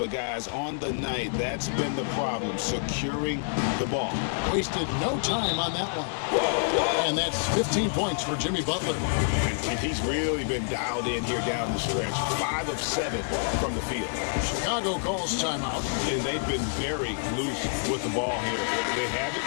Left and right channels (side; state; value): right; silent; digital silence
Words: guys, on the night, that's been the problem, securing the ball. Wasted no time on that one. And that's 15 points for Jimmy Butler. And he's really been dialed in here down the stretch. 5 of 7 from the field. Chicago calls timeout. And they've been very loose with the ball here. They haven't